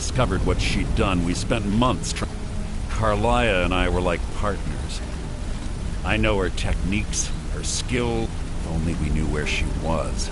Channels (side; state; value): both; identical; correlation 1.00